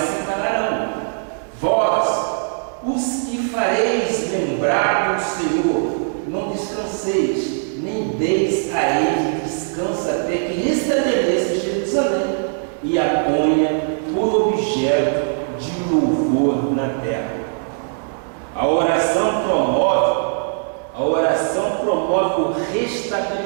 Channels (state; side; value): silent; left; digital silence